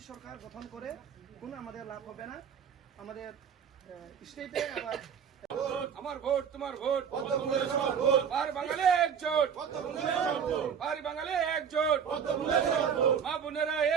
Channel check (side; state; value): left; quieter; 7.4 dB